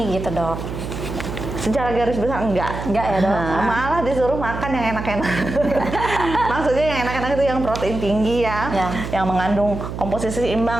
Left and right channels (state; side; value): noise; right; hum, 7 dB below the sound